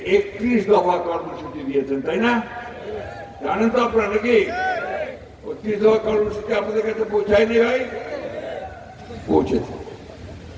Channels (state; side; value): identical; both; correlation 1.00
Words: 31 দফা কর্মসূচি দিয়েছেন, তাই না? জানেন তো আপনারা নাকি? 31 দফা কর্মসূচি আপনাদের কাছে পৌঁছায়নি ভাই? পৌঁছেছে।